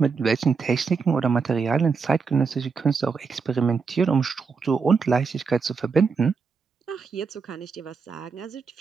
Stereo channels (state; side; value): quieter; left; 5.3 dB